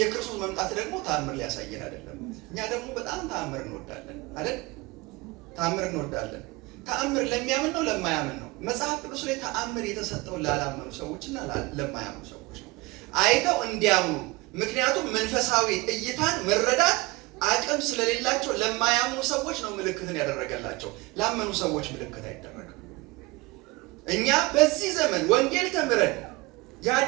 የክርስቶስ መምጣት ደግሞ ተአምር ሊያሳየን አይደለም። እኛ ደግሞ በጣም ተአምር እንወዳለን አይደል? ተአምር እንወዳለን። ተአምር ለሚያምን ነው ለማያምን ነው? መጽሐፍ ቅዱስ ላይ ተአምር የተሰጠው ላላመኑ ሰዎችና ለማያምኑ ሰዎች ነው፣ አይተው እንዲያምኑ። ምክንያቱም መንፈሳዊ እይታን መረዳት አቅም ስለሌላቸው ለማያምኑ ሰዎች ነው ምልክትን ያደረገላቸው። ላመኑ ሰዎች ምልክት አይደረግም። እኛ በዚህ ዘመን ወንጌል ተምረን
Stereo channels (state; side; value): quieter; left; 23.0 dB